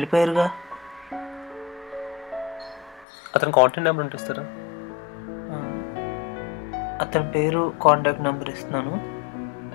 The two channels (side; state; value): right; drops out; at 3.1 s